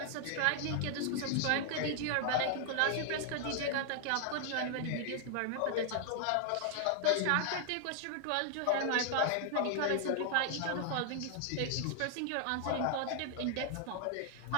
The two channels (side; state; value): both; different; correlation 0.00